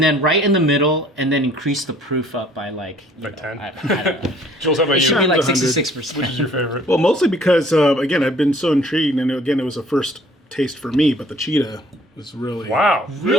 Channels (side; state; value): both; normal; correlation 0.56